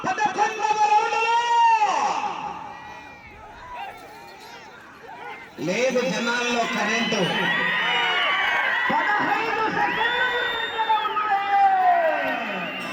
11వ రౌండ్లో లేదు. జనాల్లో కరెంటు 15 సెకండ్లు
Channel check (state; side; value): identical; both; correlation 1.00